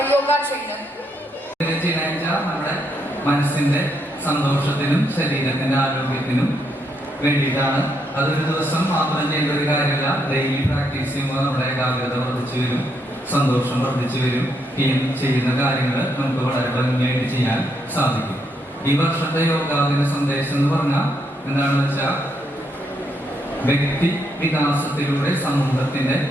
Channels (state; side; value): normal; both; correlation 0.77